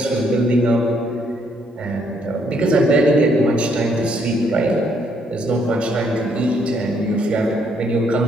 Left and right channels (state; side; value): normal; both; correlation 0.70